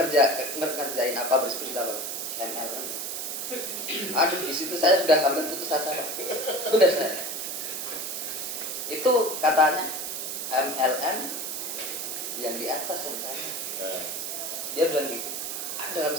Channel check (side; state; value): right; noise; hiss, 4 dB below the sound